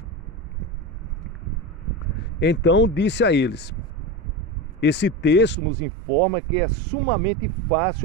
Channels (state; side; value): drops out; left; at 5.6 s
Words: Então disse a eles: esse texto nos informa que é sumamente